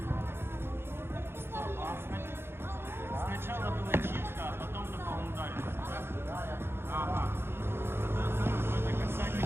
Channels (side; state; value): left; late; 0.11 ms